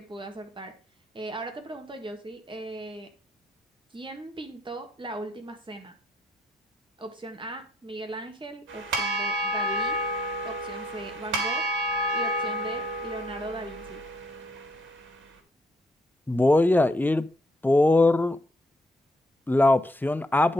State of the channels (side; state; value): both; normal; correlation 0.72